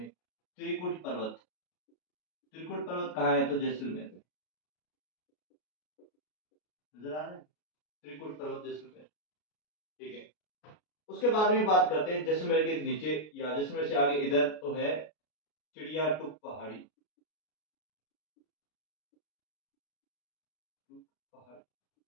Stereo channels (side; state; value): right; late; 33 ms